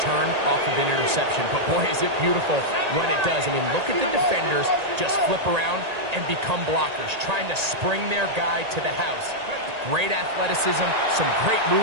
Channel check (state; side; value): late; left; 1.8 ms